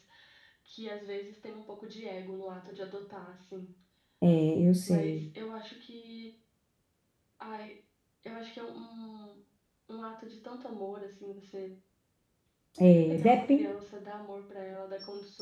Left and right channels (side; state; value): both; identical; correlation 1.00